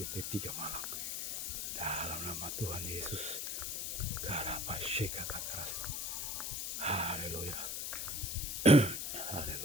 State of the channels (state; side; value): noise; left; hiss, 2 dB below the sound